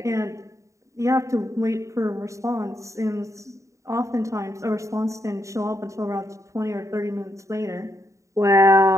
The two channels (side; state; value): left; late; 0.15 ms